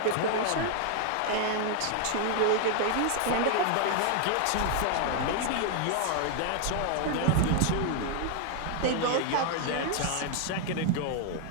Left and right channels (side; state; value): both; different; correlation 0.00